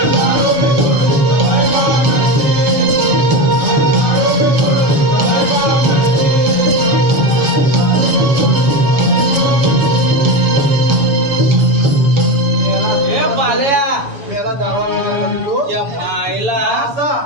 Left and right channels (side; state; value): left; late; 7.0 ms